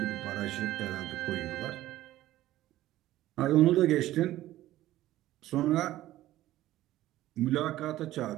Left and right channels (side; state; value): left; quieter; 14.9 dB